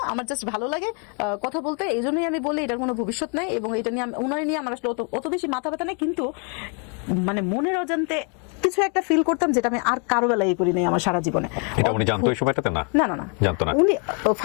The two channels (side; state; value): right; quieter; 38.4 dB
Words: আমার জাস্ট ভালো লাগে কথা বলতে, এই জন্যই আমি বলি এটার কোনো ভবিষ্যৎ নাই। এবং এটা নিয়ে ওনার নিয়ে আমার আসলে অত বেশি মাথা ব্যথা নেই, কিন্তু মানে মনের অজান্তে কিছু একটা ফিল করতাম, যেটা আমি আর কারো বেলায় করি নাই আমার সারা জীবনে। এটা উনি জানতো ওই সময়টাতে? না না জানতো না। উনি